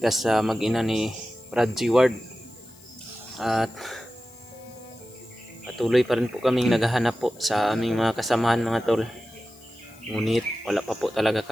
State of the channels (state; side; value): noise; left; hiss, 24 dB below the sound